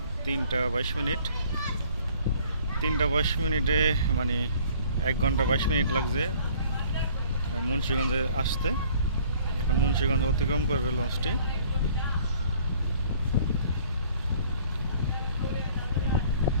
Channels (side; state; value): both; inverted; correlation -0.56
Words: 3টা 22 মিনিট। 3টা 22 মিনিটে মানে 1 ঘন্টা 22 মিনিট লাগছে মুন্সিগঞ্জে আসতে। এখন মুন্সিগঞ্জ অতিক্রম করবে লঞ্চটি।